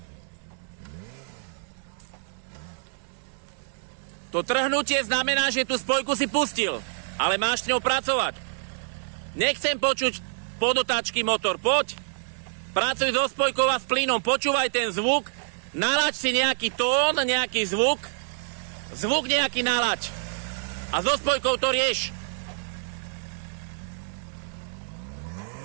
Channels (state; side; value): silent; left; digital silence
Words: To trhnutie znamená, že tú spojku si pustil, ale máš s ňou pracovať. Nechcem počuť podotáčky motor, poď. Pracuj so spojkou a s plynom, počúvaj ten zvuk, nalaď si nejaký tón, nejaký zvuk nejaký nalaď. A so spojkou to rieš.